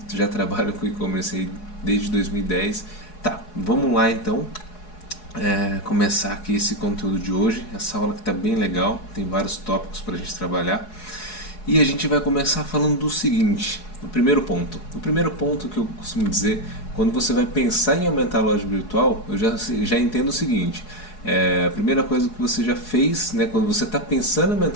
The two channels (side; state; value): right; late; 4.7 ms